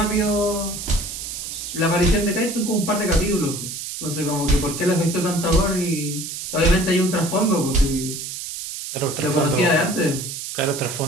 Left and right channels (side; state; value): right; noise; hiss, 7 dB below the sound